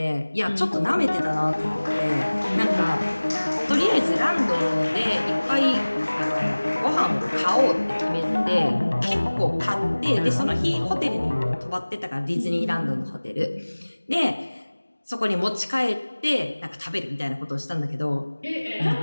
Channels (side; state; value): both; inverted; correlation -1.00